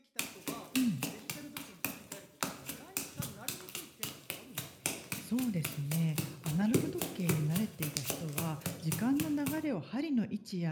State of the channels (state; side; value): identical; both; correlation 1.00